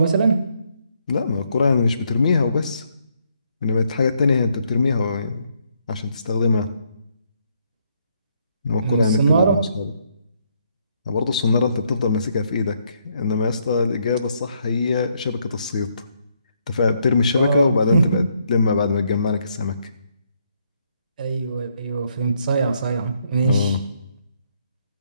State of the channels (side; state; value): both; inverted; correlation -0.73